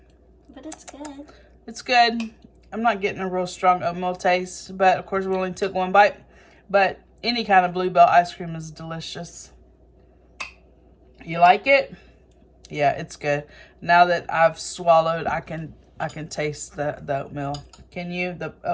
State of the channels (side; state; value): both; identical; correlation 1.00